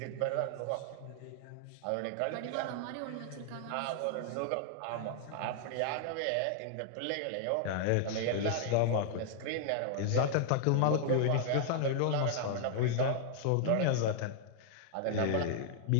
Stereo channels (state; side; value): different; both; correlation -0.01